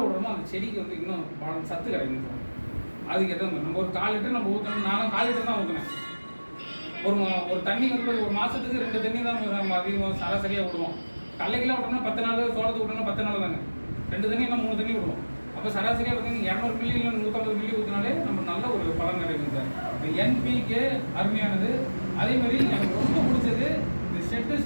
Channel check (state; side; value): inverted; both; correlation -1.00